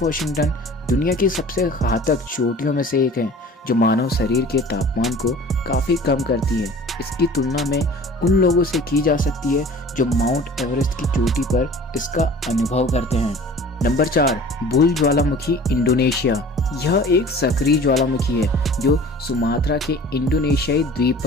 वॉशिंगटन दुनिया की सबसे घातक चोटियों में से एक है जो मानव शरीर के तापमान को काफ़ी कम करती है। इसकी तुलना में उन लोगों से की जा सकती है जो माउंट एवरेस्ट की चोटी पर इसका अनुभव करते हैं। नंबर 4, बुल ज्वालामुखी, इंडोनेशिया। यह एक सक्रिय ज्वालामुखी है जो सुमात्रा के इंडोनेशियाई द्वीप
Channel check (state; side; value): normal; both; correlation 0.44